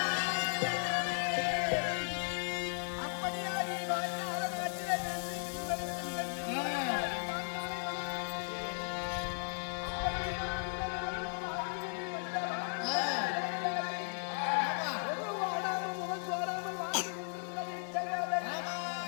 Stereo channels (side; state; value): right; silent; digital silence